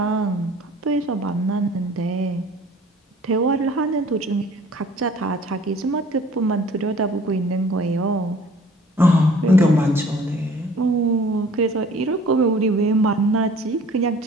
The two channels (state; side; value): normal; both; correlation 0.51